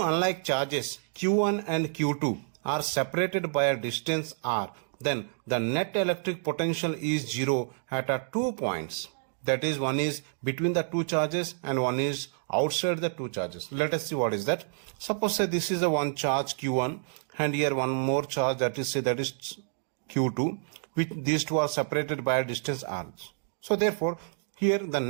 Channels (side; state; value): left; silent; digital silence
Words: unlike charges Q1 and Q2 are separated by a distance r, then the net electric potential is zero at 2 points. That is, one is between the two charges and one is outside the two charges. Let us see what is that. Suppose say this is the one charge Q1 and here one more charge, that is Q2, which these two are separated by a distance r. So therefore here the